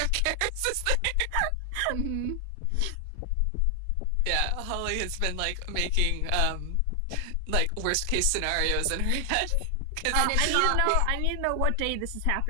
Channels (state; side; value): different; both; correlation 0.00